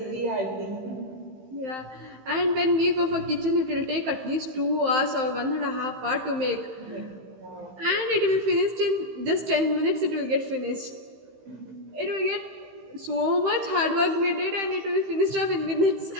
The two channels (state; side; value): late; left; 15 ms